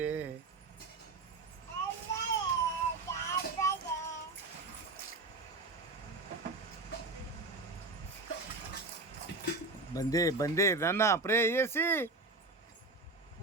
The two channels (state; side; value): quieter; left; 3.4 dB